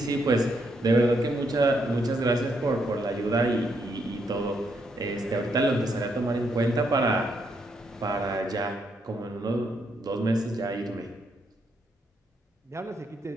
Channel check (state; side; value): normal; both; correlation 0.76